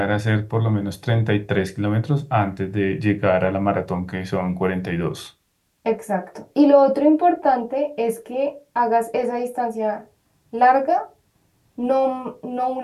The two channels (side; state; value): both; identical; correlation 1.00